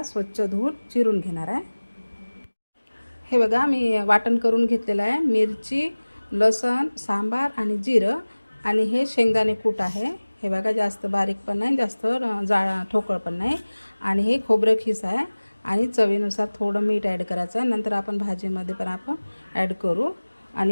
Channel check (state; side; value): inverted; both; correlation -1.00